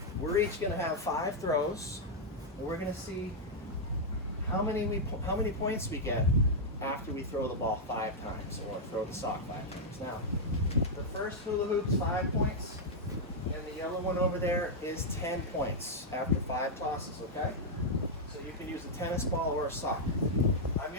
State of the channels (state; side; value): normal; both; correlation -0.04